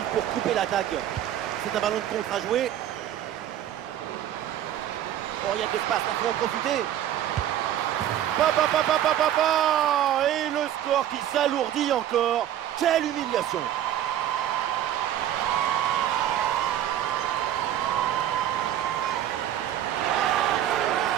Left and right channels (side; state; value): left; quieter; 11.3 dB